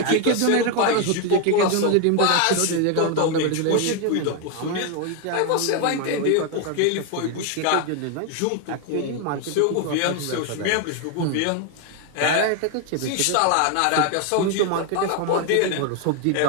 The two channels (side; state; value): both; different; correlation 0.01